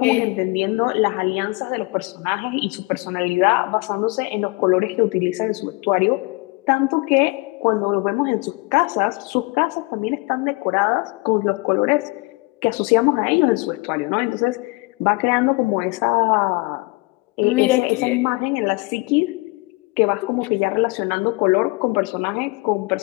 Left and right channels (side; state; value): right; quieter; 25.4 dB